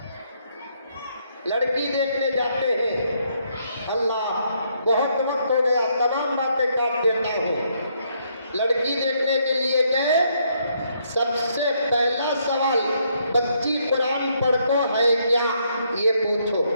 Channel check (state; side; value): inverted; both; correlation -0.73